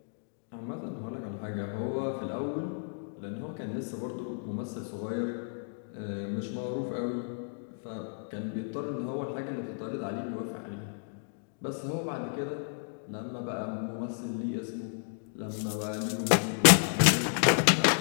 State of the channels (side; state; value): right; silent; digital silence